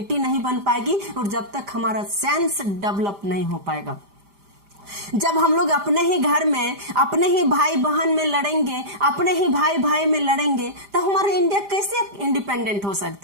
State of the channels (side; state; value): left; late; 5.0 ms